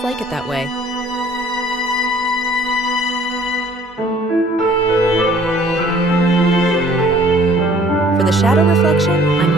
like it that way. For the shadow reflection,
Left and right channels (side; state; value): both; normal; correlation 0.56